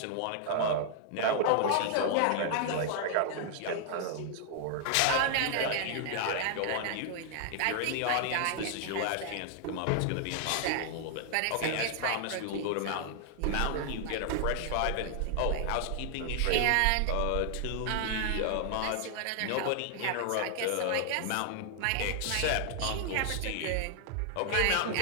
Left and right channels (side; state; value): both; different; correlation 0.00